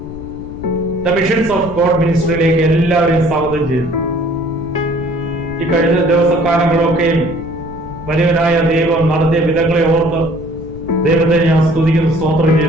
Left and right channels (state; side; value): noise; left; rumble, 13 dB below the sound